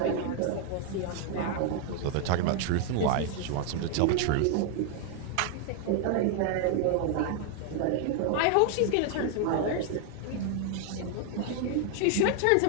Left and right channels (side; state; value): both; different; correlation 0.00